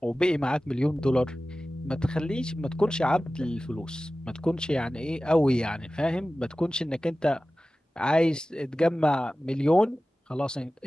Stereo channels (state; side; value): normal; both; correlation 0.96